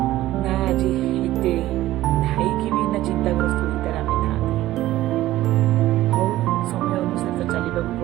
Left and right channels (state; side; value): quieter; left; 15.3 dB